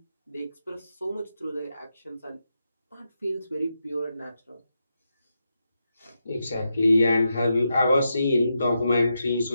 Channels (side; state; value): both; inverted; correlation -0.86